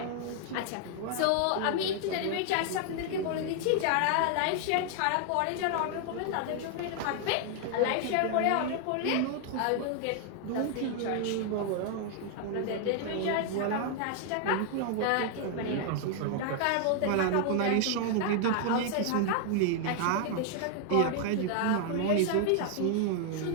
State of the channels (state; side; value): different; both; correlation 0.00